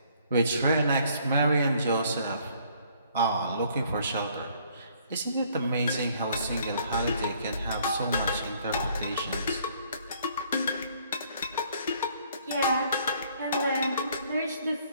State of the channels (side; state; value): both; inverted; correlation -0.63